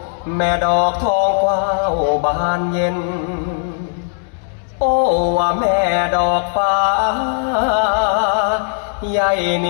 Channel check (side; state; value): right; silent; digital silence